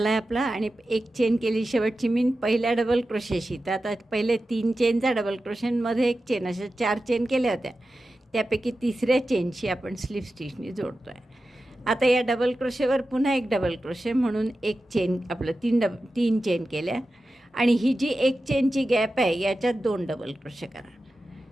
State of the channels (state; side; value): normal; both; correlation 0.93